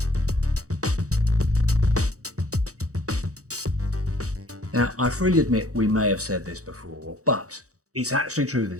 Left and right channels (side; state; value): left; late; 0.65 ms